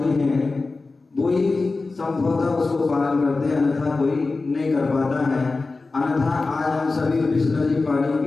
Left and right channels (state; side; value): quieter; right; 3.7 dB